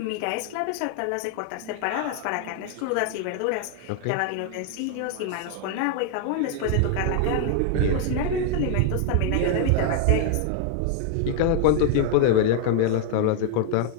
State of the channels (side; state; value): both; different; correlation 0.00